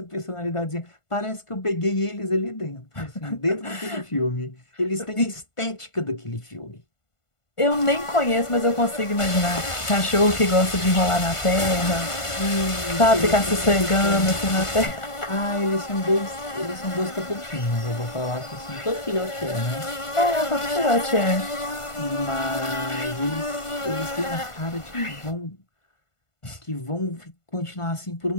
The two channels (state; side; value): late; right; 1.5 ms